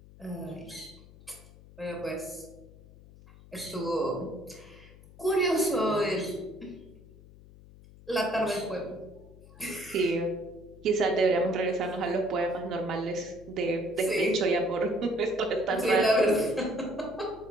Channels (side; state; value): left; noise; hum, 21 dB below the sound